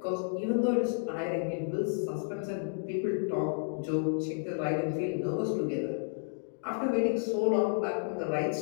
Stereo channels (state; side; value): silent; right; digital silence